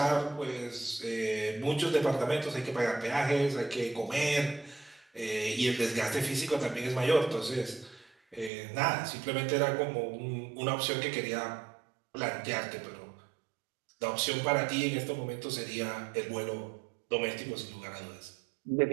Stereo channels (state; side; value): drops out; left; at 8.5 s